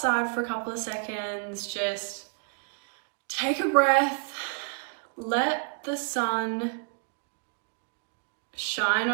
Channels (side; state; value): left; quieter; 38.8 dB